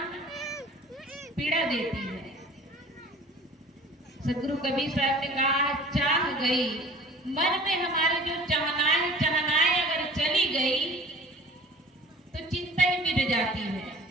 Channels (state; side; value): normal; both; correlation 0.46